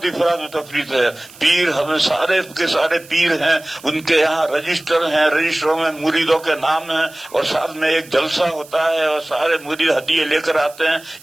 افراد و تفریط ہے. پیر ہمیں سارے کے سارے پیر ہیں، ان کے یہاں رجسٹر ہیں، رجسٹروں میں مریدوں کے نام ہیں، اور سال میں ایک جلسہ ہوتا ہے اور سارے مرید ہدیے لے کر آتے ہیں.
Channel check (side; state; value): right; noise; hiss, 21 dB below the sound